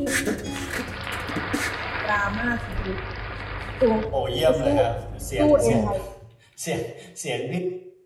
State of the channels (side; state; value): both; identical; correlation 1.00